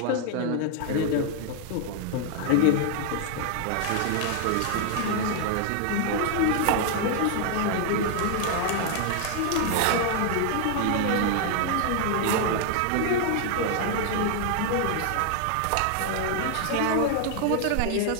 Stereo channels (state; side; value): different; both; correlation 0.00